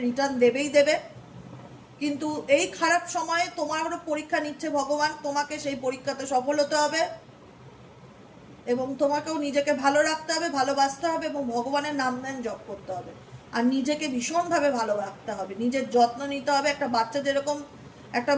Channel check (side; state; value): both; identical; correlation 1.00